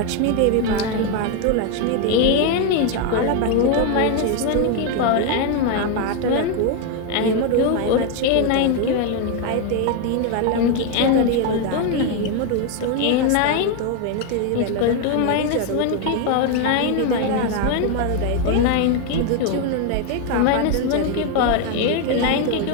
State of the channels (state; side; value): different; both; correlation 0.01